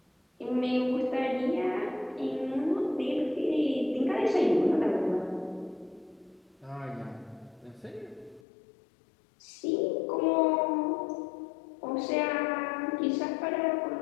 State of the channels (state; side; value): drops out; right; at 8.4 s